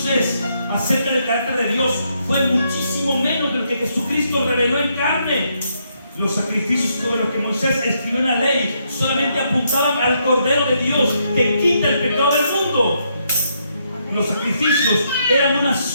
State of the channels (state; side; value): inverted; both; correlation -0.76